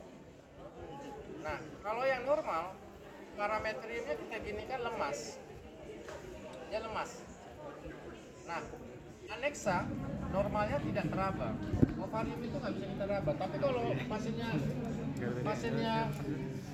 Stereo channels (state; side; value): identical; both; correlation 1.00